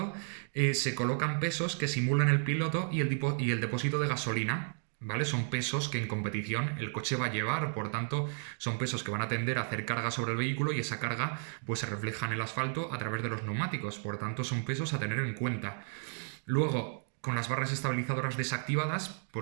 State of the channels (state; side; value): silent; left; 56 dB below the other